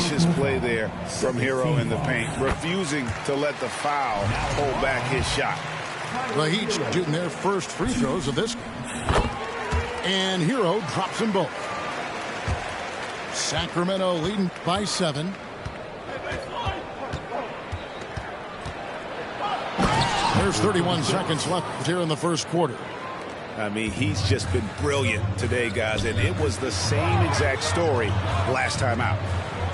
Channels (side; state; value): both; identical; correlation 1.00